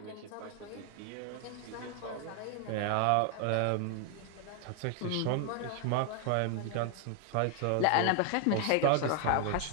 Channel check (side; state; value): both; different; correlation 0.00